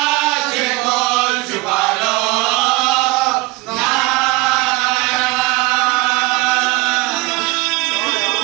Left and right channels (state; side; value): quieter; left; 22.3 dB